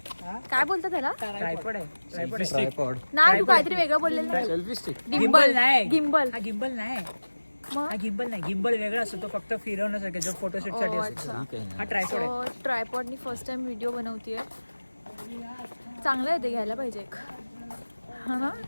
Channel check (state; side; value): inverted; both; correlation -1.00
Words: काय बोलतात त्याला? ट्रायपॉड नाही, तू काहीतरी वेगळं बोललेलं नाही. गिम्बल नाही. गिम्बल हा गिम्बल नाही. हा गिम्बल नाही. गिम्बल वेगळा असतो, तो फक्त फिरवण्यासाठी जो फोटोशूट साठी असतो. हा ट्रायपॉड आहे. ट्रायपॉडनी फर्स्ट टाइम व्हिडिओ बनवतीये. चांगलं आहे ते, घ्यायला पाहिजे एक. हा